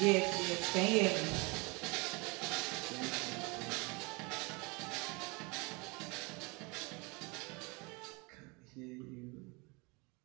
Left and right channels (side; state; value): left; quieter; 28.1 dB